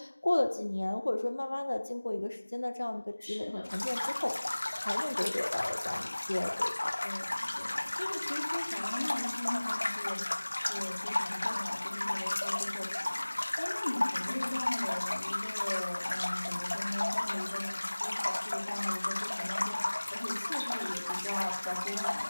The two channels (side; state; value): both; inverted; correlation -1.00